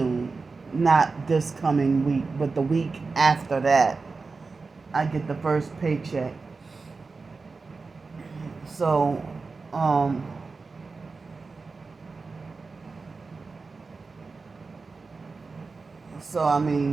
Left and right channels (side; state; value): left; quieter; 4.2 dB